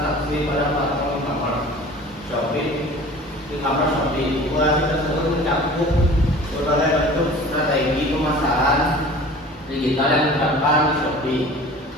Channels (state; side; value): normal; both; correlation 0.43